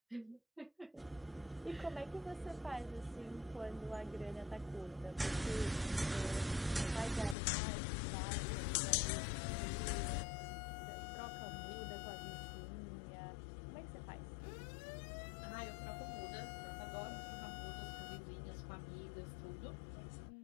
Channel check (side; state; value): right; drops out; at 7.4 s